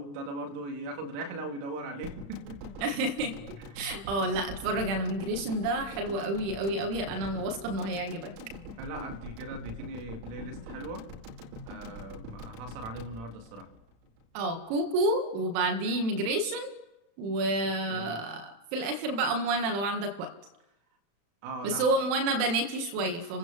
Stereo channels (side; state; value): left; late; 35 ms